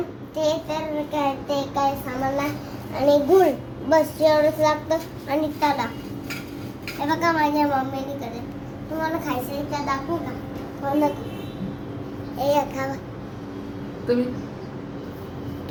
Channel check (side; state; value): both; identical; correlation 1.00